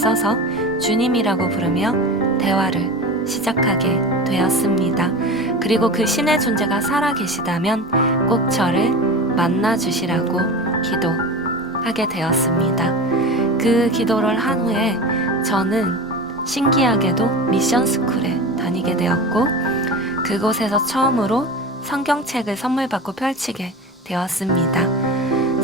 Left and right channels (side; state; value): both; normal; correlation 0.30